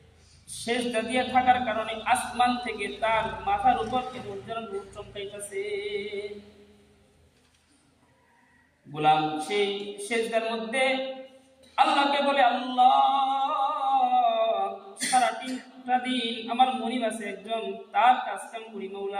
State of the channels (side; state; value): both; identical; correlation 1.00